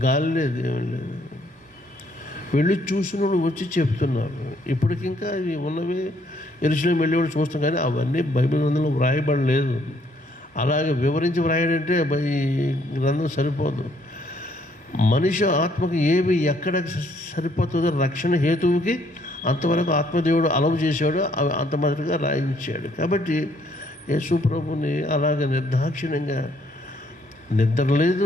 గాలి లేదు, ఏమీ లేదు. వెళ్ళి చూసిన వాళ్ళు వచ్చి చెప్తున్నారు. ఇప్పటికింకా ఇవి ఉన్నవి యెరూషలేము వెళ్ళేవాళ్ళు చూస్తాం, కానీ అవన్నీ బైబిల్ గ్రంథంలో వ్రాయబడలేదు. అలాగే వివరించి వ్రాయడంటే ఈ గ్రంథం సరిపోదు. మనిషి ఆత్మకు ఏవి ఎక్కడ సరిపోతుందో రక్షణ హేతువుకి అంతవరకు ఆత్మదేవుడు అలవు చేశాడు, అవి అంత మొదటిగా రాయించాడు. కాబట్టి యేసు ప్రభుని అలాగే నిర్దాక్షిణ్యంగా నిద్ర లేదు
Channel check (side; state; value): both; normal; correlation 0.67